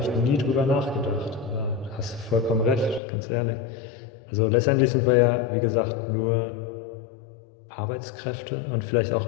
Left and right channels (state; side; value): drops out; right; at 3.0 s